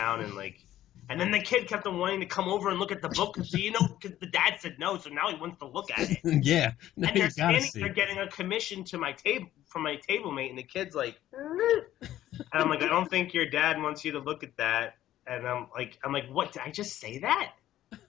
and then the kid kept on wanting to come over and look at the book because the dad said no, so now he wants to look at it. Yeah. And they're standing there getting a commission to my table from my table mate, and the kid's like, and I'm like, I don't think your dad wants you to look at that. And I'm like, what? Did I just say that?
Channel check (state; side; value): quieter; right; 13.1 dB